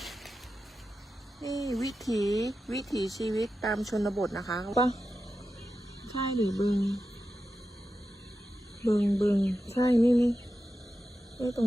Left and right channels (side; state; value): both; normal; correlation 0.91